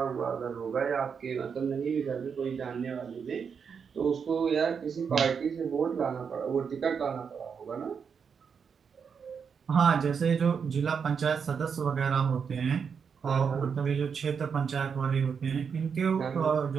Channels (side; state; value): left; quieter; 6.4 dB